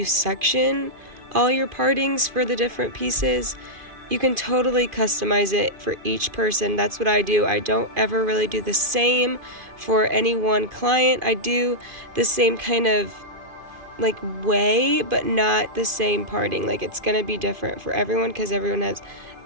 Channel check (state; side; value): late; left; 2.5 ms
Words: section all your partings for the different pieces. You can totally customize it for each person. That's what I do. I don't ever really do the same for any one client. I do the same kind of like way, but not the same parting. Like, it's going to be different for everyone because everyone has